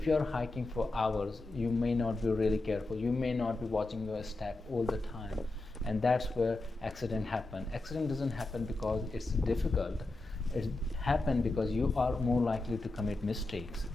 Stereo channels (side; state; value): right; quieter; 3.1 dB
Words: you are hiking for hours, you may not be really careful. You may not be watching your step all the time. And that's where accident happen. Accident doesn't happen because it's difficult. It happen because you are more likely to commit mistakes.